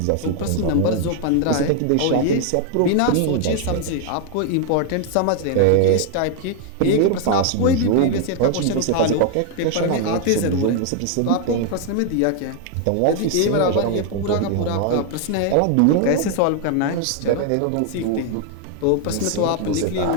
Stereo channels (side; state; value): both; different; correlation 0.00